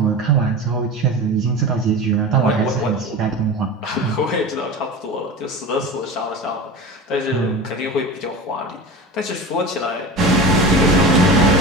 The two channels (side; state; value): both; normal; correlation 0.30